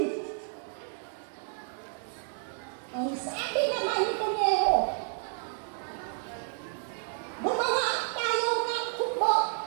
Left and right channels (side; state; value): left; silent; digital silence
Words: Ang sabi naman ni Kuneho, gumawa tayo ng hukbo